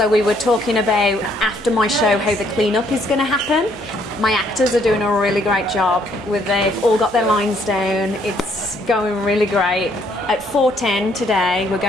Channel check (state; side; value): noise; right; hum, 24 dB below the sound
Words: we were talking about after my show how the clean-up is going to happen. My actors are doing a really great job. They've all got their lines down. It's going really great. At 4:10 today, we're